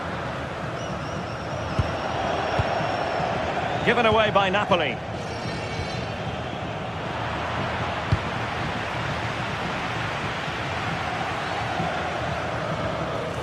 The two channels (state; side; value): identical; both; correlation 1.00